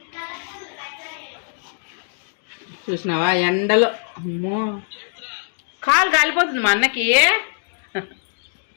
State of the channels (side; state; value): right; silent; digital silence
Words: చూసినావా ఎండలో అమ్మో కాలు కాలిపోతుంది మా అన్నకి.